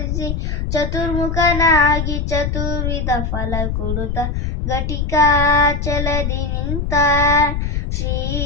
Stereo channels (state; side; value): noise; left; rumble, 1 dB below the sound